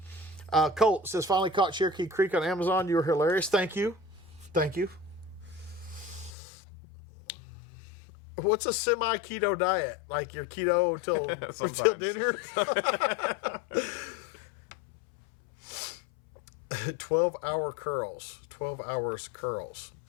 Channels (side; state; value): right; drops out; at 6.3 s